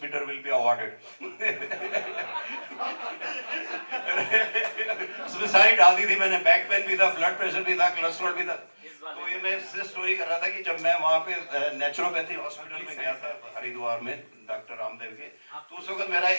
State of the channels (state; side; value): inverted; both; correlation -1.00